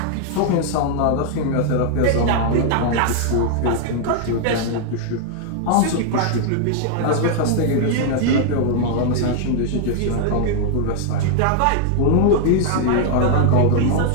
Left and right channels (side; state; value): both; different; correlation -0.01